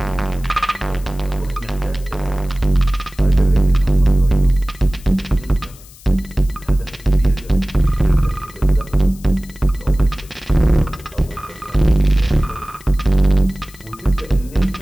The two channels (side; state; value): left; noise; hiss, 22 dB below the sound